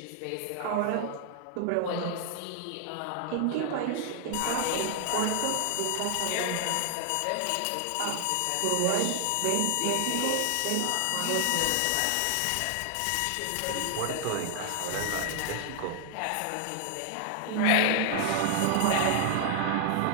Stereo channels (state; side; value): different; both; correlation 0.00